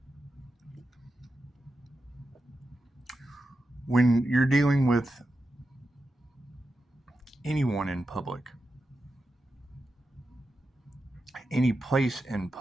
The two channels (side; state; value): both; normal; correlation 0.89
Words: When you're dealing with anyone in public, any place in